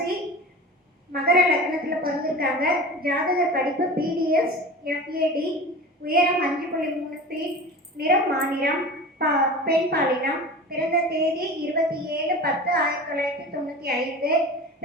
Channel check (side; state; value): both; normal; correlation 0.34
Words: மகர லக்னத்தில் பிறந்திருக்காங்க. ஜாதக படிப்பு பிடிஎஸ் எஃப்ஏடி, உயரம் 5.3 ஃபீட், நிறம் மாநிறம், பெண் பாலினம். பிறந்த தேதி 27/10/1995.